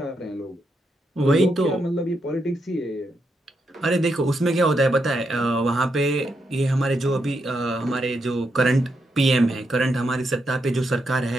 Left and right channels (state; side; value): normal; both; correlation 0.81